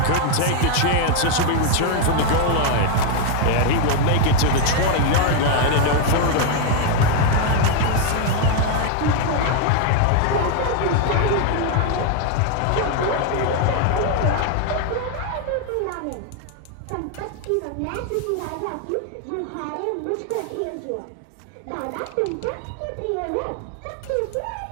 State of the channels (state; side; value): different; both; correlation 0.01